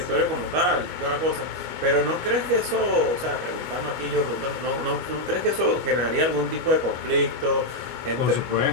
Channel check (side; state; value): left; late; 25 ms